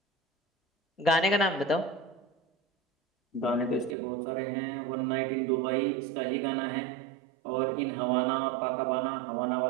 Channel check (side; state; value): left; drops out; at 4.0 s